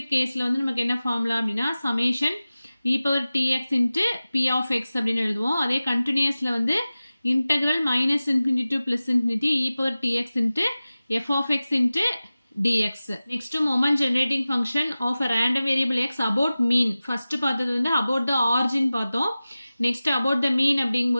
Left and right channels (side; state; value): both; inverted; correlation -0.96